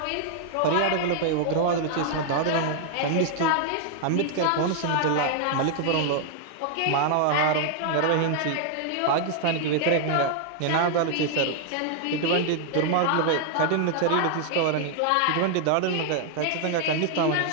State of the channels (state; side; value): different; both; correlation 0.00